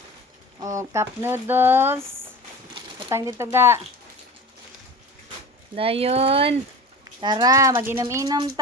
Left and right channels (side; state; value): both; normal; correlation 0.35